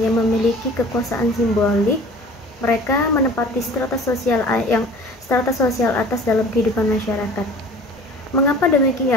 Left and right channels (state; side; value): normal; both; correlation 0.45